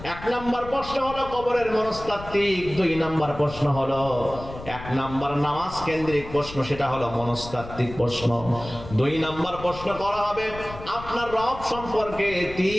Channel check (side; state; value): left; noise; rumble, 13 dB below the sound